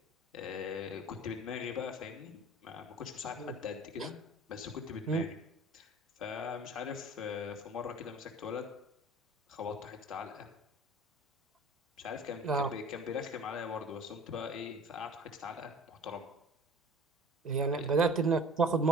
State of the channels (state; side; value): normal; both; correlation 0.44